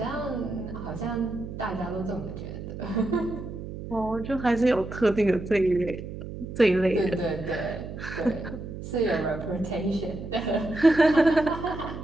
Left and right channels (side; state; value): right; noise; hum, 9 dB below the sound